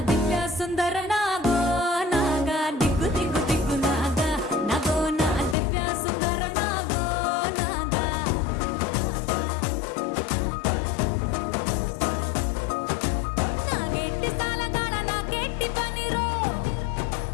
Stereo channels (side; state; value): right; drops out; at 5.6 s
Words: దివ్య సుందర నాగో నాగా దిగ్గు దిగ్గు దిగ్గు నాగా నాగో నా దివ్య సుందర నాగో నాగా నాగెట్టి సాలగాడ నాకెట్టి పనిరో